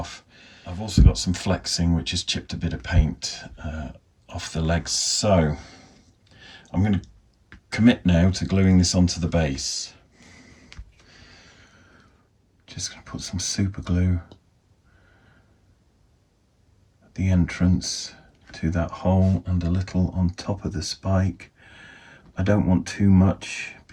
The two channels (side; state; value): both; identical; correlation 1.00